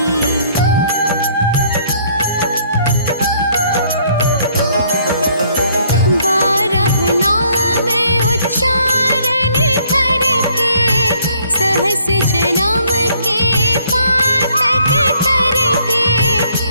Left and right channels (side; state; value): both; inverted; correlation -0.64